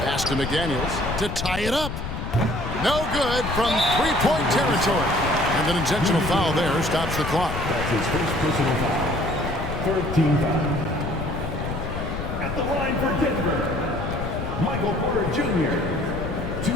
Pass to McDaniels to tie it up. No good from 3-point territory. And an intentional foul there stops the clock. That's his first personal foul. Third team foul. At the line for Denver, Michael Porter Jr.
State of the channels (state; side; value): noise; left; rumble, 5 dB below the sound